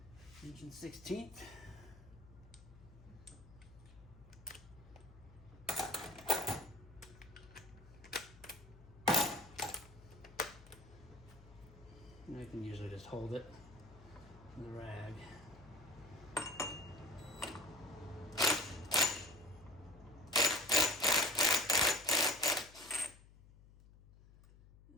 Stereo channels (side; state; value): left; noise; hum, 21 dB below the sound